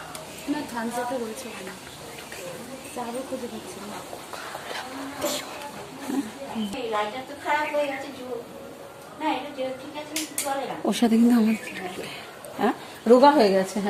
না, থামস আপে রয়েছে ওখানে। চাবো খুঁজে পাচ্ছি না। লাইটার তো খারাপ হয়ে গেছে, না এটা ঠিক আছে, চলে না, ওর সাথে কিন্তু আমার হ্যাঁ রোগা হয়ে গেছে।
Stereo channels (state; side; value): identical; both; correlation 1.00